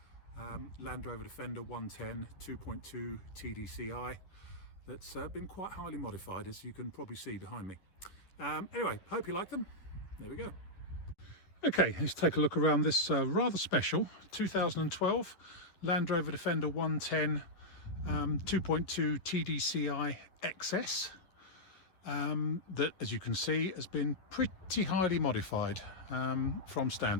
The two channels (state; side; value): late; right; 11 ms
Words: Land Rover Defender 110 2.2 TDCi that's been quite highly modified, as you can probably see behind me. Anyway, hope you like them. There we go. Okay, let's take a look around this rather special 2012 Land Rover Defender 110 2.2 TDCi XS that, as you can see, has been pretty highly modified from